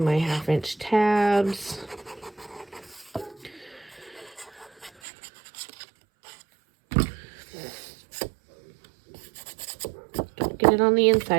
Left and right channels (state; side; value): drops out; left; at 4.9 s